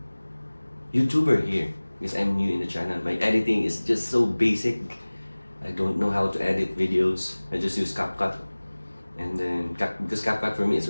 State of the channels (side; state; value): both; inverted; correlation -1.00